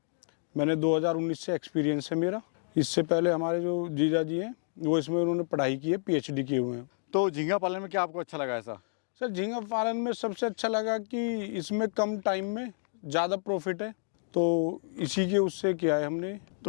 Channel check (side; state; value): right; silent; digital silence